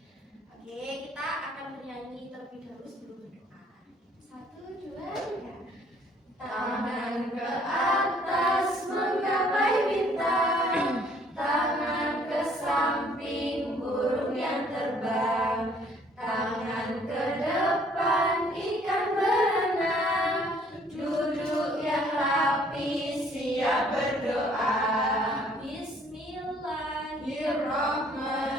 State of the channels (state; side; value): normal; both; correlation 0.60